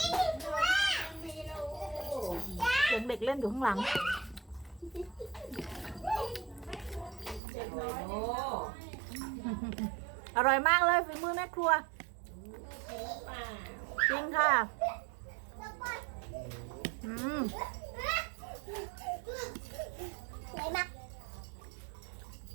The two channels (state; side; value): drops out; left; at 7.4 s